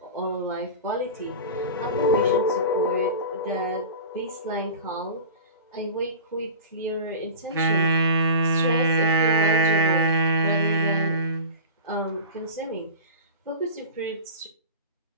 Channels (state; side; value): inverted; both; correlation -0.32